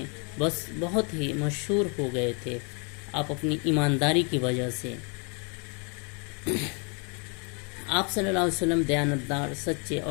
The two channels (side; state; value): right; quieter; 36.0 dB